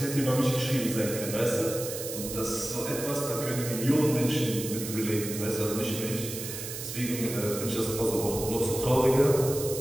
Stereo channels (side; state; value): right; noise; hiss, 7 dB below the sound